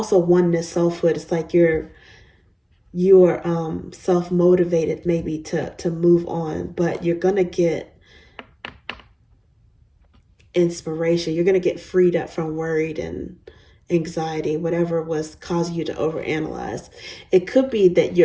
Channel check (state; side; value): identical; both; correlation 1.00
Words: oneness, selfhood. It's like you're self-motivated maybe to move on, but you're gonna get inspiration. You're gonna get freed up from worried and anxiety, whatever was causing you to overanalyze. It could be that